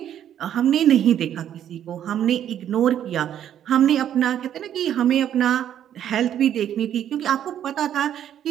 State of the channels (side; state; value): left; quieter; 10.4 dB